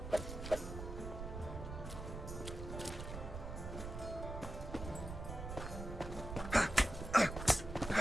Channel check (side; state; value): right; noise; rumble, 7 dB below the sound